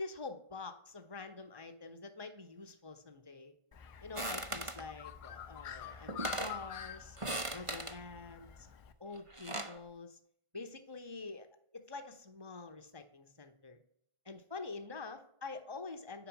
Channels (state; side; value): late; left; 1.5 ms